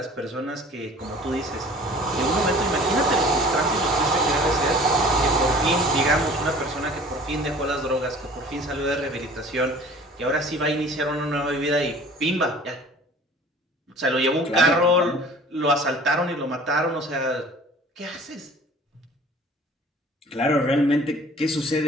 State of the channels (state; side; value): normal; both; correlation 0.47